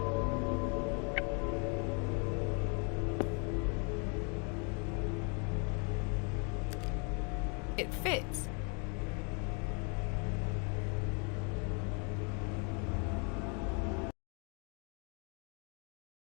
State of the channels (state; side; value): quieter; right; 35.7 dB